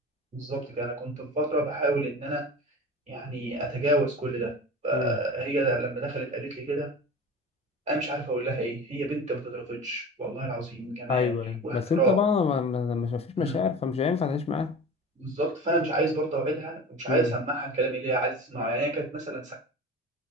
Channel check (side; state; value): both; normal; correlation 0.35